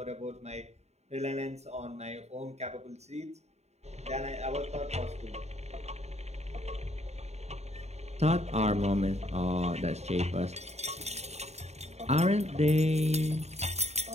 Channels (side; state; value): left; late; 0.32 ms